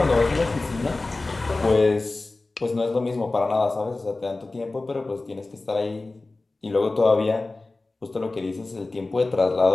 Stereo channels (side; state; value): right; quieter; 3.2 dB